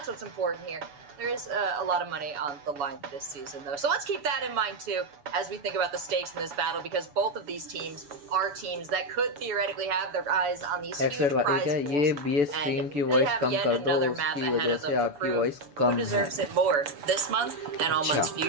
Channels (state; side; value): late; left; 7.0 ms